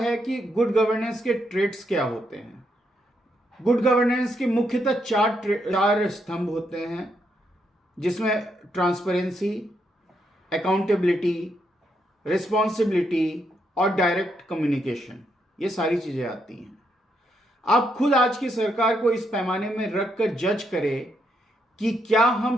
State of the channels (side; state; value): both; normal; correlation 0.79